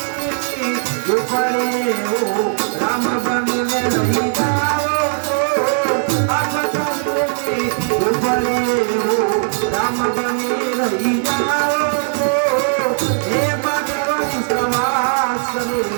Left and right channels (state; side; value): silent; left; digital silence